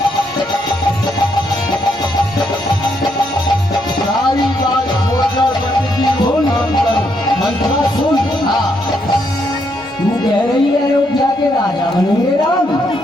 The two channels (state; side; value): normal; both; correlation 0.75